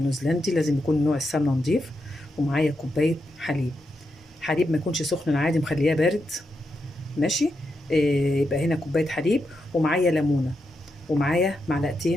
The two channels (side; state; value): both; normal; correlation 0.85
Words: لازم يكون نوع السمنه نضيف، ومعايا كوبايه حليب. حليب ما يكونش سخن، عادي مخلياه بارد. ماشي. يبقى هنا كوبايه حليب، ومعايا ليمونه، ومعايا